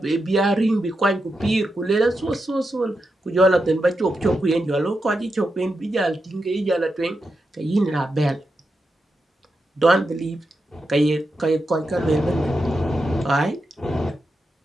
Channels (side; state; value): both; normal; correlation 0.87